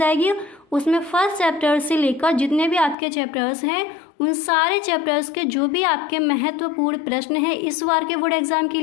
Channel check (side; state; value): right; drops out; at 3.0 s